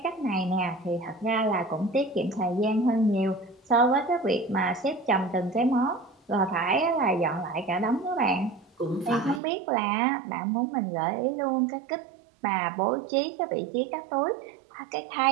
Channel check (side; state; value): left; drops out; at 9.4 s